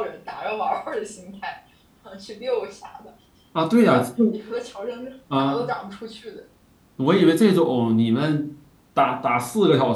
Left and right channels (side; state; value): both; identical; correlation 1.00